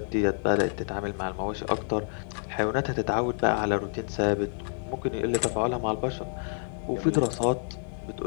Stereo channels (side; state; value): right; silent; 57 dB below the other